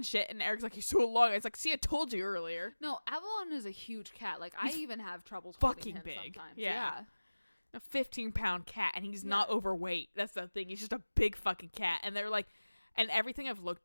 shit. And Eric's like, he's so long. It's like, see, I told you earlier. No, Avalon is a huge cat. Like, He's I even have trouble fucking him big. Sometimes. Yeah. A 15-pound cat. And he's not overweight. That's the thing. He's just a big fucking cat. And they're like, and everything I've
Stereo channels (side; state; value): both; inverted; correlation -1.00